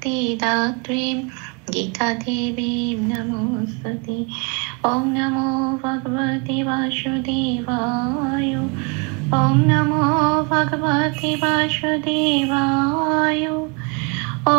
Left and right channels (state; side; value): quieter; left; 32.5 dB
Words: গীতা দেবীম নমস্তুতে। ওং নমো ভগবতে বাসুদেবায়। ওং নমো ভগবতে বাসুদেবায়।